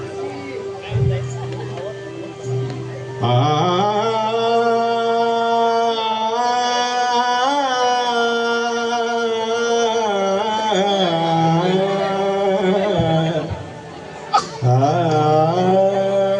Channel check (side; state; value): both; identical; correlation 1.00